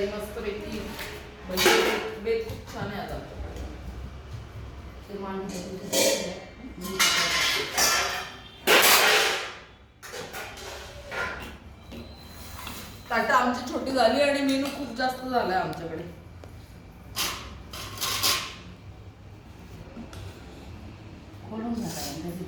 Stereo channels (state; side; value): identical; both; correlation 1.00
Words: मस्त पैकी म्हणजे बेत खूप छान आहे आज आमच्याकडे. ताटं आमची छोटी झाली आणि मेनू खूप जास्त झालाय आमच्याकडे.